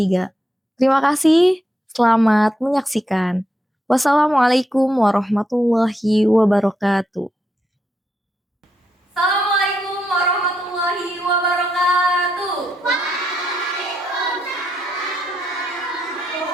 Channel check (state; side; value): normal; both; correlation 0.81